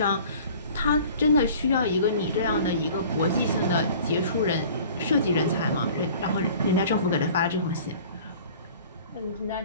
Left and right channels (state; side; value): inverted; both; correlation -0.47